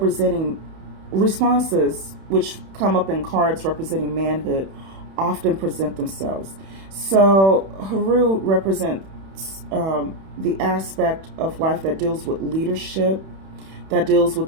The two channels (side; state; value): left; late; 31 ms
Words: responses, which come up in cards representing manhood, often present themselves. So Haru represents the aspect of life that deals with leadership, that deals with